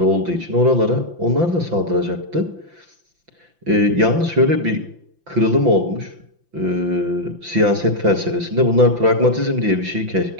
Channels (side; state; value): left; late; 5.9 ms